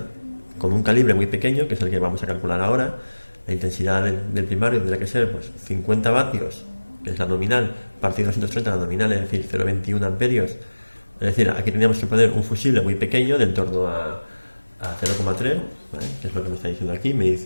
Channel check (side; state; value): both; inverted; correlation -1.00